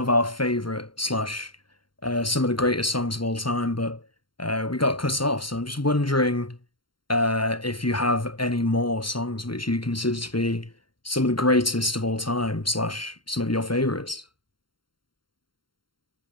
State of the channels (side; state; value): right; late; 0.73 ms